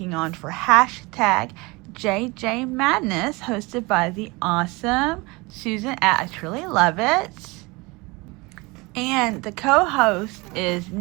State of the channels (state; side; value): quieter; left; 24.8 dB